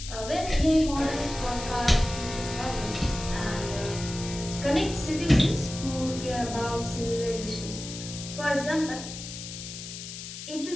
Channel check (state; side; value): noise; left; hiss, 10 dB below the sound